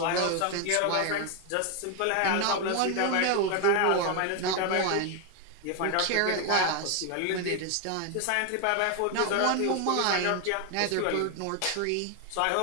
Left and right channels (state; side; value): different; both; correlation 0.01